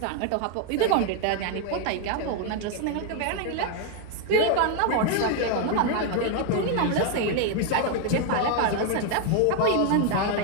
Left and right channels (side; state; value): both; different; correlation 0.00